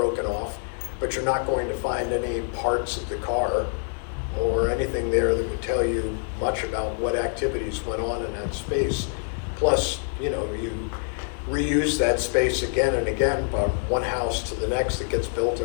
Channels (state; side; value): silent; right; 55 dB below the other